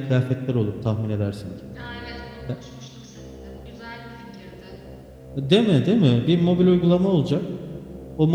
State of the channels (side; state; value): both; identical; correlation 1.00